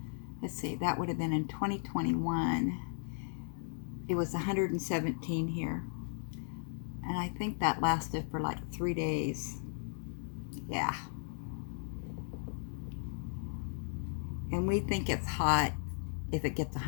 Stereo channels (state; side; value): silent; right; digital silence